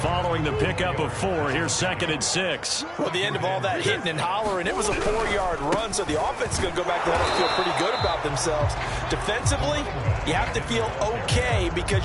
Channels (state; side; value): identical; both; correlation 1.00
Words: Following the pickup of 4, here's 2nd and 6. Well, the end of all that hitting and hollering, it was a 4-yard run, so the offense is going to go back there and feel pretty good about themselves. Defensively, you have to feel okay because